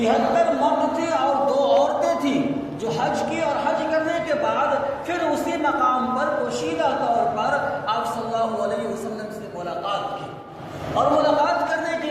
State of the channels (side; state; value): both; identical; correlation 1.00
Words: مرد تھے اور 2 عورتیں تھیں جو حج کی، اور حج کرنے کے بعد پھر اسی مقام پر پوشیدہ طور پر آپ صلی اللہ علیہ وسلم سے ملاقات کی، اور ملاقات کرنے کے